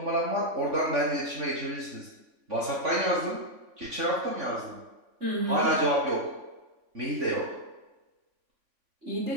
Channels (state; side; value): late; left; 3.5 ms